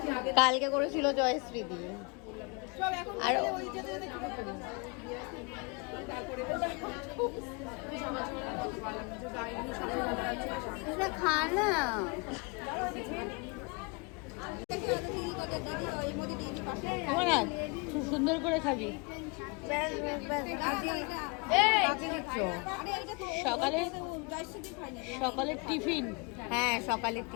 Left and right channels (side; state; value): right; quieter; 31.0 dB